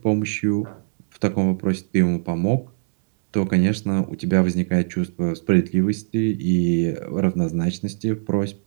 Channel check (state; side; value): silent; left; digital silence